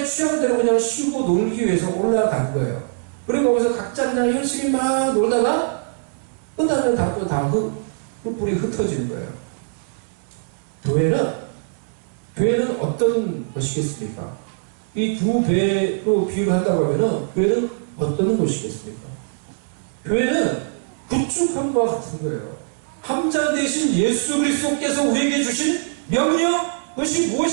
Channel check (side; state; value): left; silent; 64 dB below the other